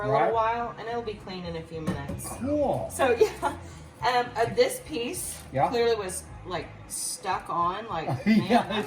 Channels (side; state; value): both; identical; correlation 1.00